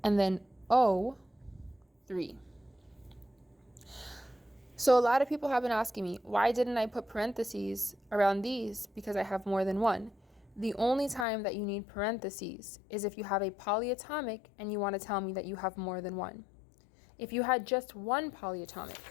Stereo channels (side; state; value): right; drops out; at 11.2 s